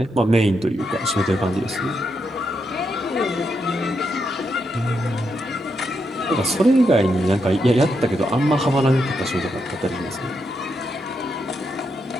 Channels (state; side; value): normal; both; correlation 0.81